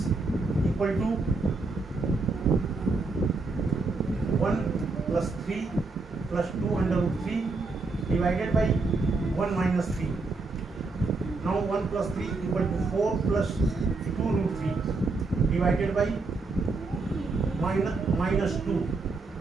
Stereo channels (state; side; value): quieter; left; 3.7 dB